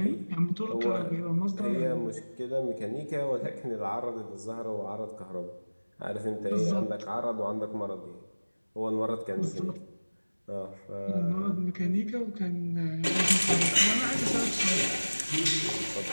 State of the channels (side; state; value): both; inverted; correlation -1.00